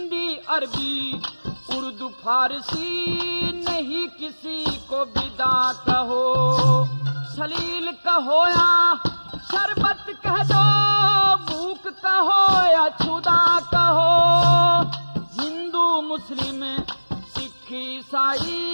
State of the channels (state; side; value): inverted; both; correlation -1.00